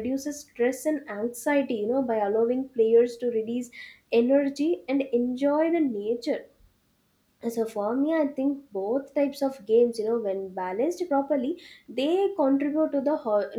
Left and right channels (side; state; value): both; identical; correlation 1.00